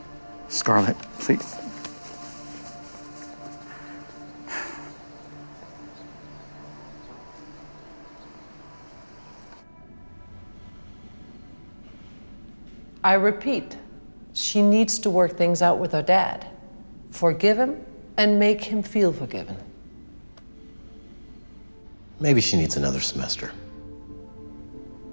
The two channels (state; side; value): inverted; both; correlation -1.00